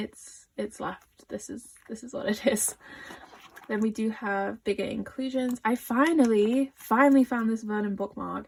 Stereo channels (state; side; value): identical; both; correlation 1.00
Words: left. This is what it is. Then we do have bigger inclusions. I finally found this Vernon bookmark.